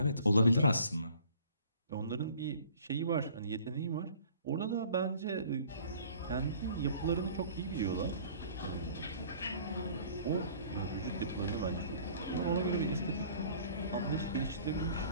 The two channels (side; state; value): both; inverted; correlation -0.52